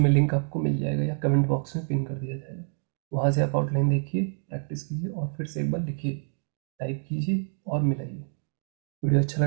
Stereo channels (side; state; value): left; silent; digital silence